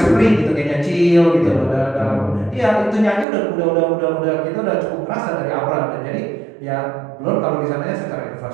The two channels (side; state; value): left; drops out; at 3.2 s